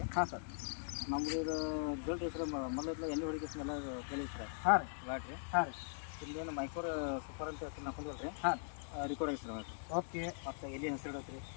ಹಾಂ ಸರ್. ನಮ್ಮದು ಇದು ರಿಸಲ್ಟ್ ಹೆಸರು ಮೊದಲು ಎಣ್ಣೆ ಹೊಡಿಕೆ ಸ್ಮೆಲ್ಲ ಕೇಳಿ ಸರ್. ಹಾಂ ರೀ. ಲಾಟ್ರಿ. ಹಾಂ ರೀ. ಇಲ್ಲೇನು ಮೈಕೋರ್ ಸೂಪರ್ ಅಂತ ಹೆಸರು ಹಾಕೊಂಡಿಲ್ಲ ರೀ. ಹಾಂ, ರಿಕಾರ್ಡ್ ಹೆಸರು. ಓಕೆ. ಮತ್ತು ಇಲ್ಲಿ ಹೆಸರು ಇಡತ್ರಿ.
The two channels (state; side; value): silent; right; digital silence